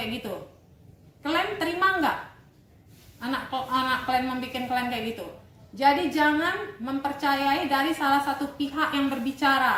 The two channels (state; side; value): identical; both; correlation 1.00